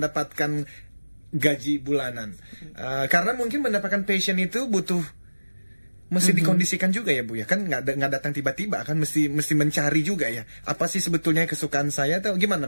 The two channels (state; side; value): inverted; both; correlation -1.00